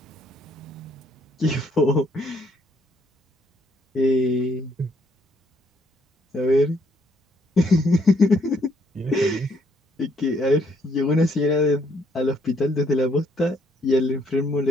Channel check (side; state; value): both; normal; correlation 0.69